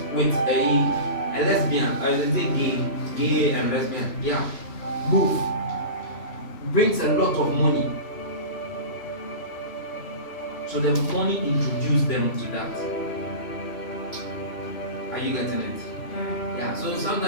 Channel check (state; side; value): late; right; 2.9 ms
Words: with a lesbian, or is it gay and lesbian, yeah, both, brings a lot of money. So the money introduced them to that. Are you getting it? Yeah. So